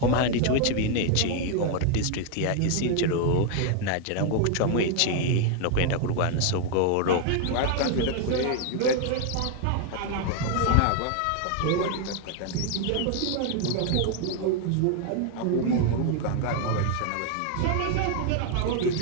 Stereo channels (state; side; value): different; both; correlation 0.00